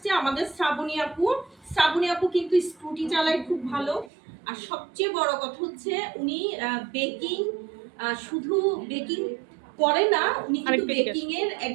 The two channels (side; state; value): left; drops out; at 4.1 s